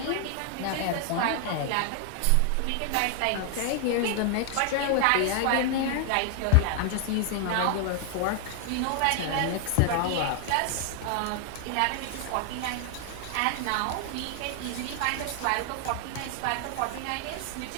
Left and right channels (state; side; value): different; both; correlation 0.00